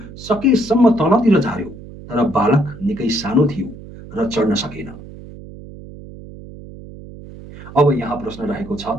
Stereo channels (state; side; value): noise; right; hum, 16 dB below the sound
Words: सकेसम्म तलतिर झार्यो, तर बालक निकै सानो थियो र चढ्न सकेन। अब यहाँ प्रश्न रहेको छ,